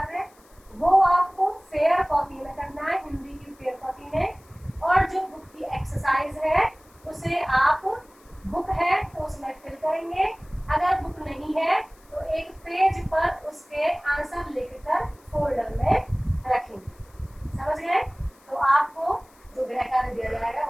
वो आपको फेयर कॉपी में करना है, हिंदी की फेयर कॉपी में। और जो बुक की एक्सरसाइज है उसे आप, बुक है तो उसमें फिल करेंगे, अगर बुक नहीं है तो एक पेज पर उसके आंसर लिखकर फोल्डर में रखेंगे। समझ गए। तो आपको जो गृह कार्य दिया जाएगा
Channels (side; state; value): left; noise; hiss, 29 dB below the sound